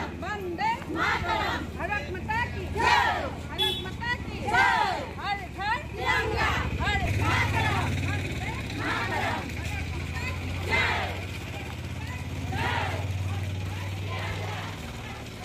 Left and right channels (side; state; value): both; identical; correlation 1.00